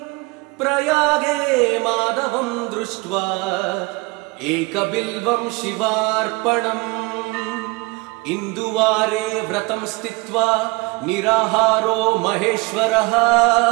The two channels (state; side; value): quieter; left; 25.3 dB